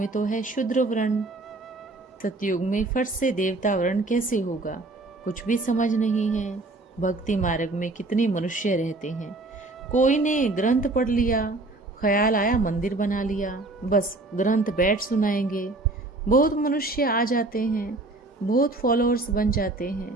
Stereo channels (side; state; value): left; quieter; 3.0 dB